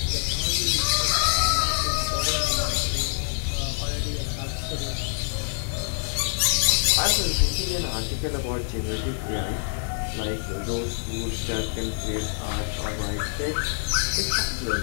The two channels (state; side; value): silent; right; 58 dB below the other